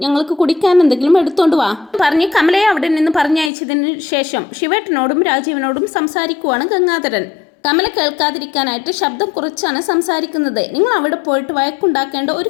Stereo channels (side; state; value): right; drops out; at 3.5 s